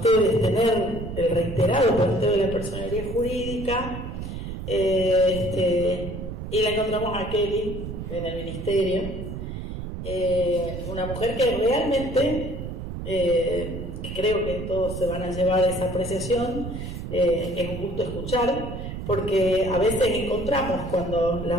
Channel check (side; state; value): right; noise; rumble, 7 dB below the sound